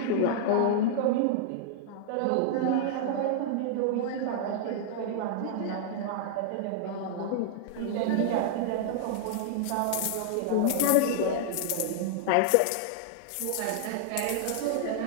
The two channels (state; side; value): different; both; correlation -0.01